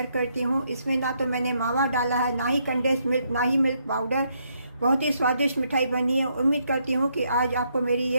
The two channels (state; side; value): inverted; both; correlation -0.75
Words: करती हूँ। इसमें ना तो मैंने मावा डाला है, ना ही कंडेंस्ड मिल्क, ना ही मिल्क पाउडर। बहुत ही स्वादिष्ट मिठाई बनी है। उम्मीद करती हूँ कि आज आपको मेरी